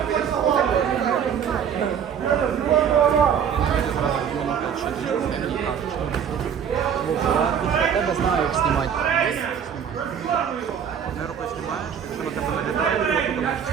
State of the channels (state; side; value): quieter; left; 8.0 dB